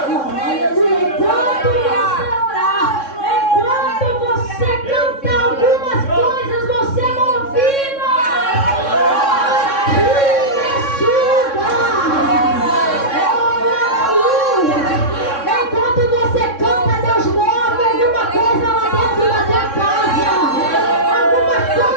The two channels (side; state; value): right; late; 3.6 ms